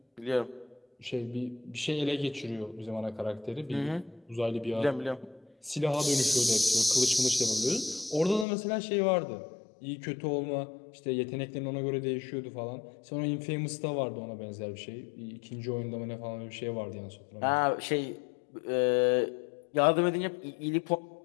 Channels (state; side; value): drops out; right; at 8.5 s